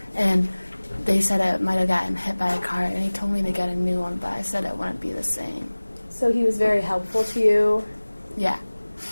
and they said it might have gotten hit by a car, and he told me to get a new one, but I said it wouldn't be the same. So he was very helpful to you? Yeah.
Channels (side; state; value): both; inverted; correlation -1.00